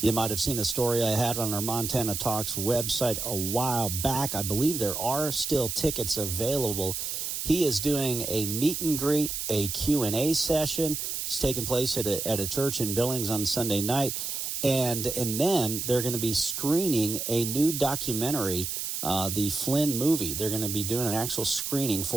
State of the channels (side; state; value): right; noise; hiss, 3 dB below the sound